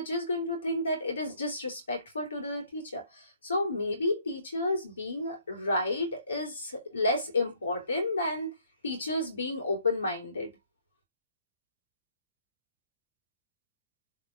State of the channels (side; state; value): both; inverted; correlation -0.65